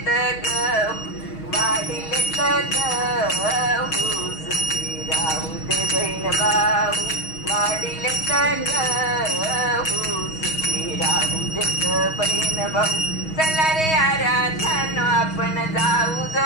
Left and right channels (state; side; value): late; right; 6.3 ms